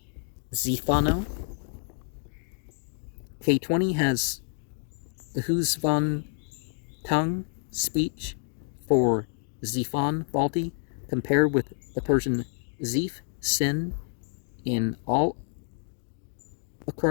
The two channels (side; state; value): right; silent; 59 dB below the other